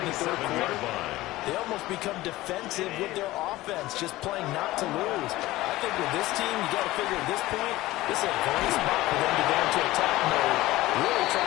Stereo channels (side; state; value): right; quieter; 17.6 dB